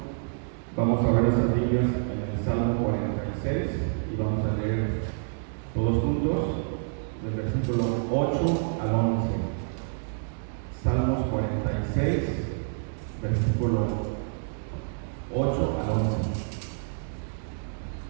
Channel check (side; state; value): left; silent; digital silence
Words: Vamos a ver las Biblias en el Salmo 46 y vamos a leer todos juntos del versículo 8 al 11. Salmos 46, versículo 8 al 11.